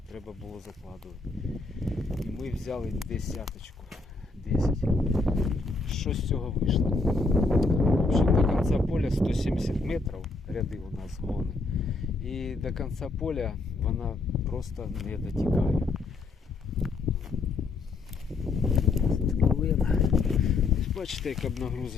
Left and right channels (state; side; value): quieter; right; 3.7 dB